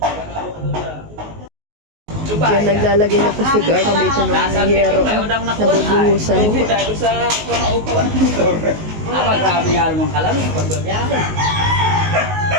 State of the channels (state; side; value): late; left; 19 ms